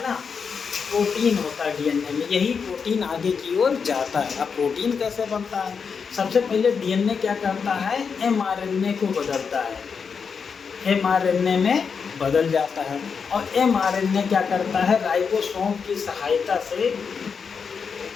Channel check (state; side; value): quieter; right; 5.9 dB